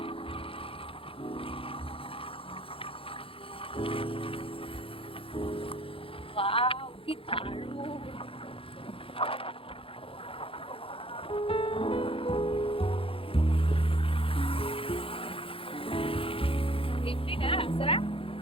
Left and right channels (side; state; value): right; late; 0.27 ms